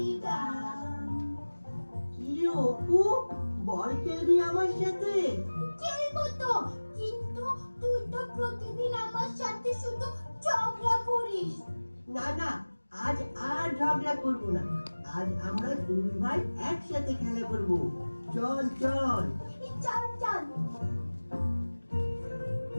গান। কি অপু, বল খেলবি আমার সাথে? খেলবো তো, কিন্তু তুই তো প্রতিদিন আমার সাথে শুধু ঝগড়া করিস। না না, আজ আর ঝগড়া করবো না। আজ আমরা দুই ভাই একসাথে খেলা করবো। চল চল। চল চল।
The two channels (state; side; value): inverted; both; correlation -1.00